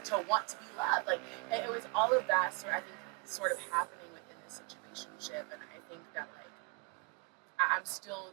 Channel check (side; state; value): left; quieter; 31.6 dB